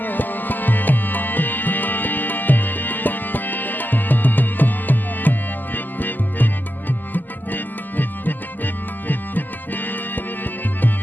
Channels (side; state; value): right; late; 0.087 ms